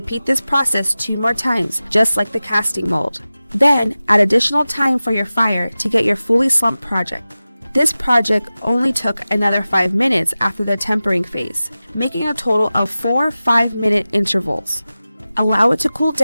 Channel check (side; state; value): both; inverted; correlation -0.96